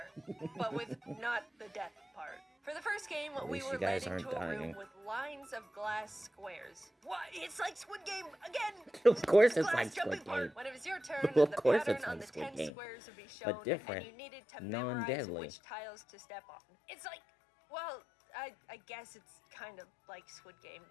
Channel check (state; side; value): drops out; right; at 12.7 s